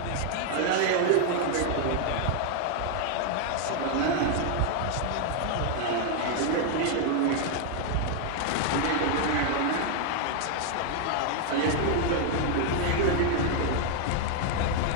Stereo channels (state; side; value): different; both; correlation 0.00